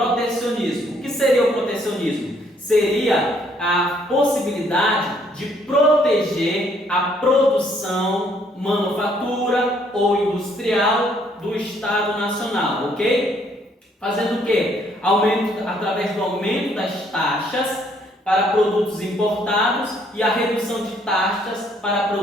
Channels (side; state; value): both; normal; correlation 0.66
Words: O que seria o protecionismo? Seria a possibilidade de proteger a produção manufatura ou industrial do Estado nacional, ok? Fazendo o quê? Através do aumento das taxas para produtos importados e a redução de taxas para